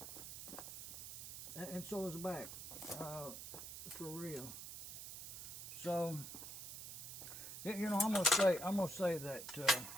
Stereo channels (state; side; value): noise; right; hiss, 9 dB below the sound